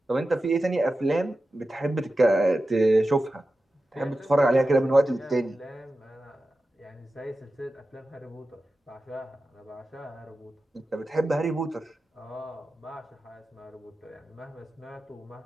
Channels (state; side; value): normal; both; correlation 0.93